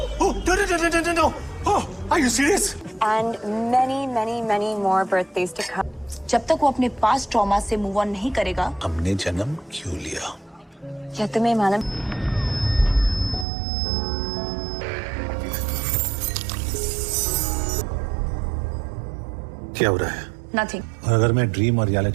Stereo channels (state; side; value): drops out; left; at 13.5 s